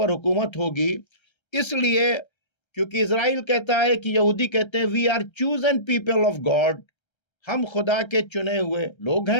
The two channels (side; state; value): right; late; 1.3 ms